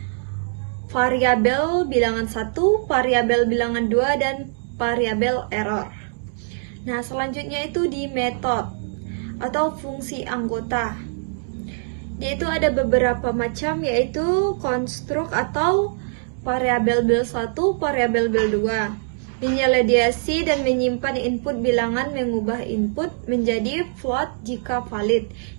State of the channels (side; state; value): left; silent; 64 dB below the other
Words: variabel bilangan 1, variabel bilangan 2, dan variabel error. Nah, selanjutnya itu di metode atau fungsi anggota. Yaitu ada beberapa macam, yaitu konstruk atau variabel bel 1, variabel bel 2. Menyaladiasi dan menyimpan input bilangan, mengubah input menjadi float jika valid,